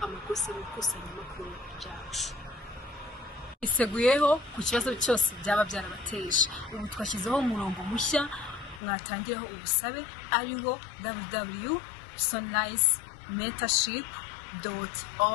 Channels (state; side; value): drops out; right; at 8.8 s